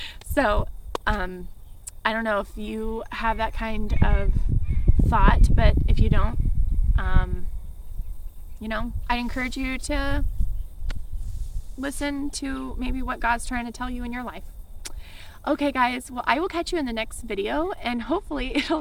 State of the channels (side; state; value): both; identical; correlation 1.00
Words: So I don't know if you have that kind of thought, but if you don't, you know, I encourage you to listen to maybe what God's trying to tell you in your life. Okay guys, well, I will catch you in the next video, and hopefully